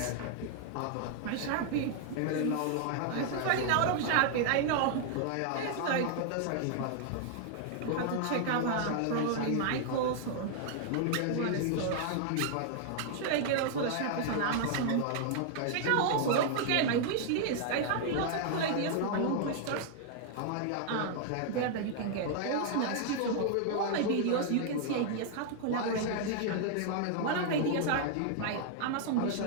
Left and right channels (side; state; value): both; different; correlation 0.00